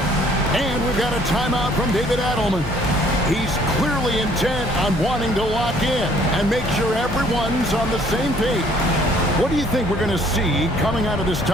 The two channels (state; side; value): normal; both; correlation 0.60